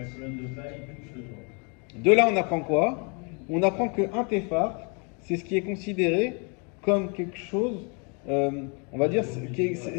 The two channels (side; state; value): right; quieter; 34.8 dB